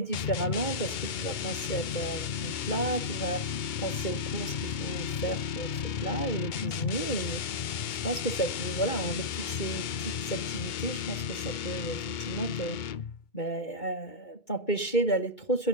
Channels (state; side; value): late; right; 2.2 ms